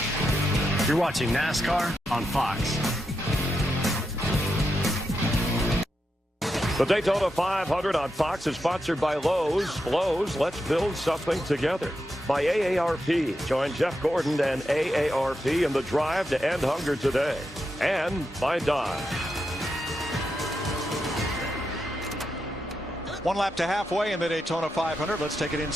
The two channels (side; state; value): both; normal; correlation 0.86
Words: You're watching NASCAR on Fox. The Daytona 500 on Fox is sponsored by Lowe's. Lowe's, let's build something together. By AARP. Join Jeff Gordon and AARP in the drive to end hunger today. And by Dodge. One lap to halfway in the Daytona 500. Let's take an